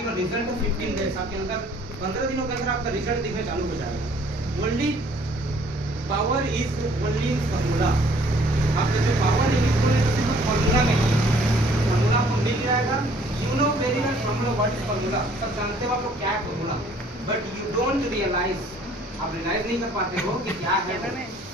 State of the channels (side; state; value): both; normal; correlation 0.58